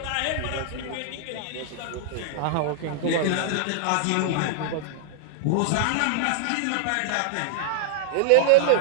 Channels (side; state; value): both; different; correlation -0.01